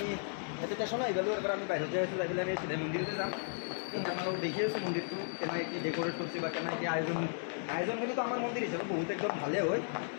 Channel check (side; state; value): right; silent; digital silence